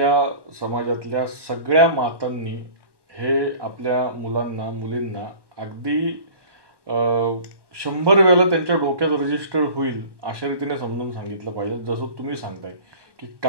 समाजातल्या सगळ्या मातांनी हे आपल्या मुलांना मुलींना अगदी 100 वेळेला त्यांच्या डोक्यात रजिस्टर्ड होईल अशा रीतीने समजून सांगितलं पाहिजे. जसं तुम्ही सांगताय की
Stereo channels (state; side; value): late; left; 1.2 ms